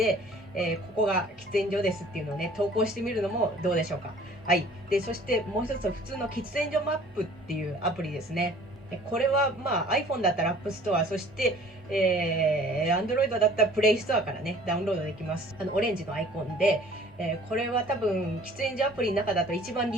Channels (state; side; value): normal; both; correlation 0.51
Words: ここが喫煙所ですっていうのをね、投稿してみるのもどうでしょうか。はい。で、そしてもう一つは普通の喫煙所マップっていうアプリですね。これはiPhone だったら App Store、そして、Android だったら Play Store からね、ダウンロードできます。オレンジのアイコンで、これは多分、喫煙所アプリの中だと一番